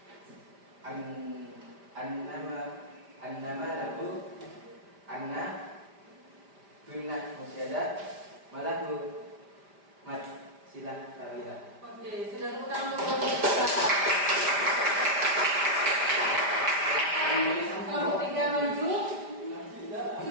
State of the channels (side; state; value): left; late; 5.0 ms